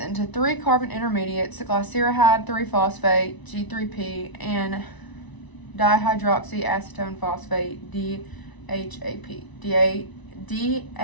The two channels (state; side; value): late; right; 1.0 ms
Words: 3 carbon intermediates, glyceride 3-phosphate, G3P, and dihydroxyacetone phosphate, DHAP.